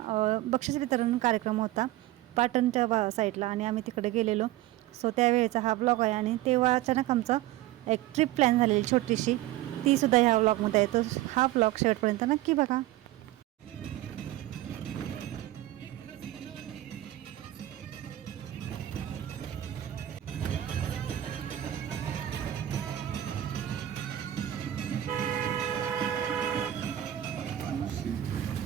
बक्षीस वितरण कार्यक्रम होता पाटणच्या साईडला आणि आम्ही तिकडे गेलेलो. सो त्यावेळेचा हा व्लॉग आहे आणि तेव्हा अचानक आमचा एक ट्रिप प्लॅन झालेली छोटीशी, तीसुद्धा ह्या व्लॉगमध्ये आहे. तर हा व्लॉग शेवटपर्यंत नक्की बघा.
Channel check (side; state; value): left; quieter; 14.4 dB